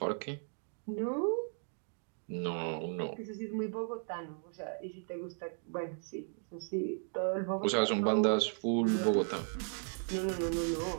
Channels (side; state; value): left; silent; 54 dB below the other